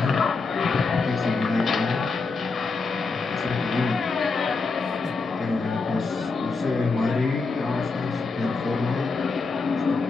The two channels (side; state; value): right; quieter; 4.2 dB